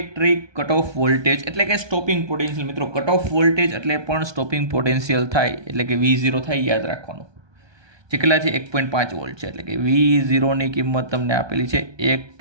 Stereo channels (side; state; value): left; late; 1.2 ms